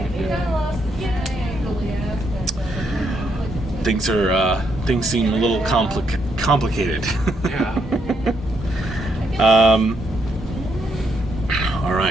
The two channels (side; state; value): both; normal; correlation 0.76